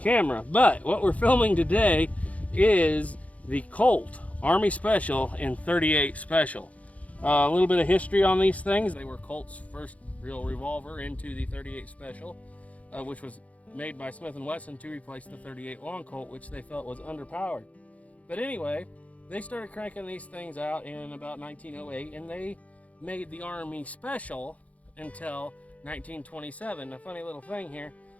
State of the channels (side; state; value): right; late; 0.068 ms